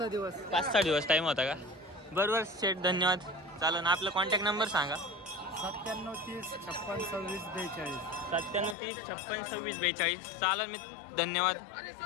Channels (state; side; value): drops out; right; at 8.8 s